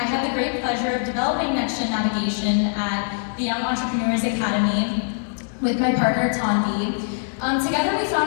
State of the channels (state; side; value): silent; right; 64 dB below the other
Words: had the great pleasure of developing Next Gen Navigation at the Young Entrepreneurs Academy with my partner, Tanvi. Together, we